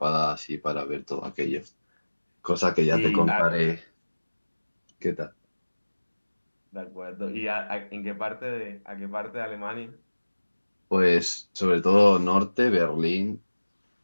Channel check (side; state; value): both; inverted; correlation -1.00